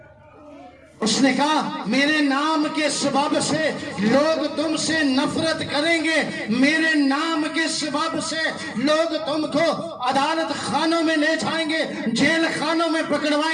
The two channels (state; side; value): identical; both; correlation 1.00